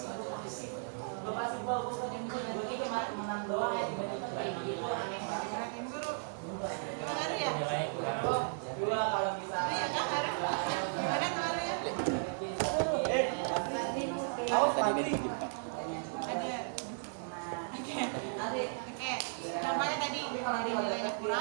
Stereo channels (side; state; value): left; silent; digital silence